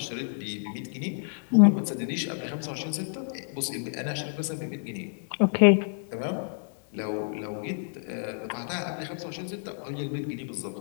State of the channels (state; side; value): silent; right; digital silence